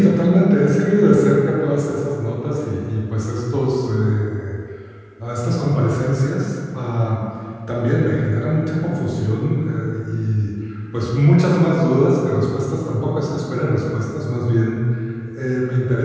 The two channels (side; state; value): both; identical; correlation 1.00